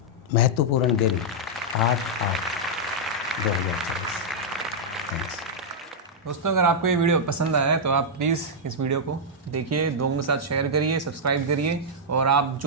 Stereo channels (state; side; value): normal; both; correlation -0.07